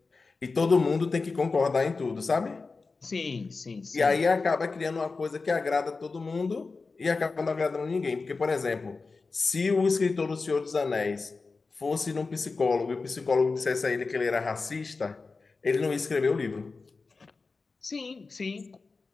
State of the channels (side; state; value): right; quieter; 4.1 dB